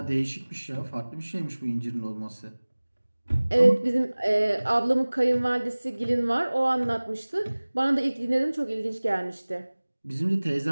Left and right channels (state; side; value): inverted; both; correlation -1.00